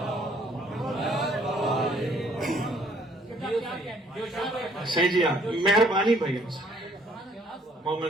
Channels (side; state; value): both; normal; correlation 0.62